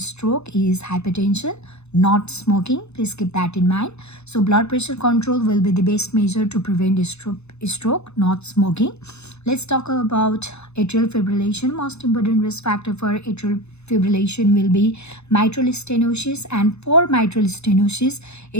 is hypertension, not smoking. Please keep that in mind. So blood pressure control will be the best measure to prevent stroke, not smoking. Let's talk about atrial fibrillation. Most important risk factor for atrial fibrillation will be mitral stenosis, and for mitral stenosis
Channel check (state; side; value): late; right; 0.81 ms